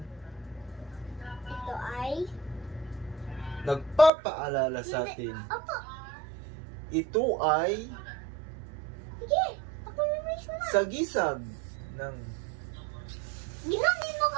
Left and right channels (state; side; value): drops out; left; at 4.1 s